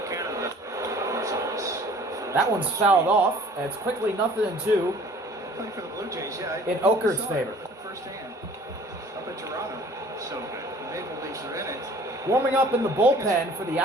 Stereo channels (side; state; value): both; normal; correlation 0.50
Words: Canada. That one's fouled off. And it's quickly 0-2 Playing for the Blue Jays, yeah. in Okert's favor. Firsthand. Up in Toronto. So good. The Maple Leafs are in it. Warming up in the bullpen for the